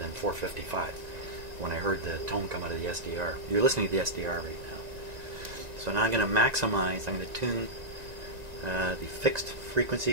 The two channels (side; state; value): left; late; 1.9 ms